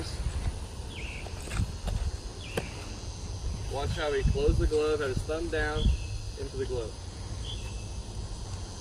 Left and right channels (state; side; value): identical; both; correlation 1.00